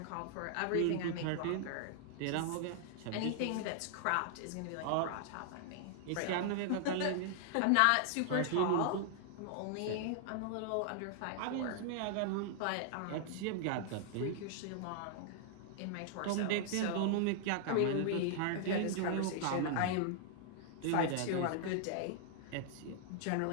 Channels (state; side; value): different; both; correlation -0.01